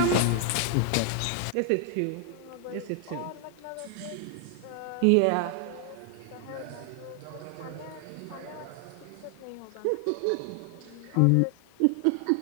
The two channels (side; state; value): both; different; correlation 0.00